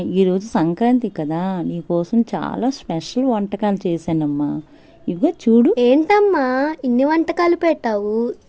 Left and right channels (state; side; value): identical; both; correlation 1.00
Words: ఈరోజు సంక్రాంతి కదా, నీకోసం చాలా స్పెషల్ వంటకాలు చేశానమ్మా. ఇదిగో చూడు. ఏంటమ్మా ఇన్ని వంటకాలు పెట్టావు?